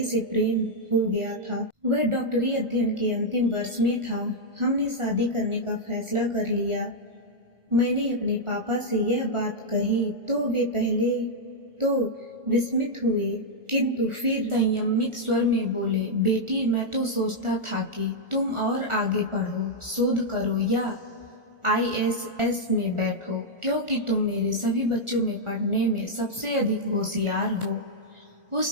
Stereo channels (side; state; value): left; late; 1.4 ms